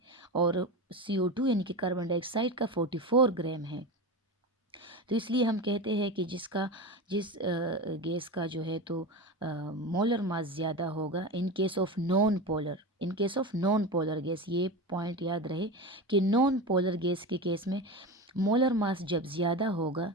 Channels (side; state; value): both; normal; correlation 0.24